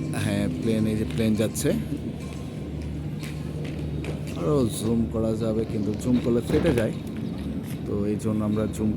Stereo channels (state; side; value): identical; both; correlation 1.00